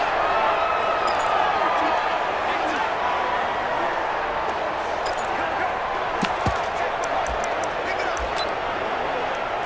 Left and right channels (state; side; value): identical; both; correlation 1.00